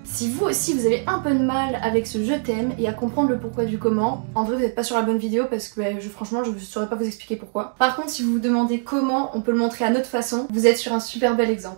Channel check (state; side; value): silent; left; digital silence